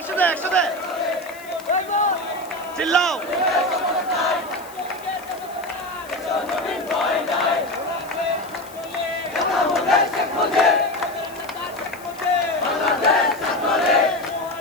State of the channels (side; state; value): left; noise; hiss, 21 dB below the sound